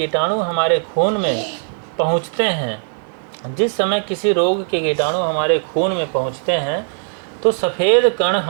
हमारे खून में पहुंचते हैं जिस समय किसी रोग के कीटाणु हमारे खून में पहुंचते हैं तो सफ़ेद कण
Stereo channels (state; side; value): silent; left; 59 dB below the other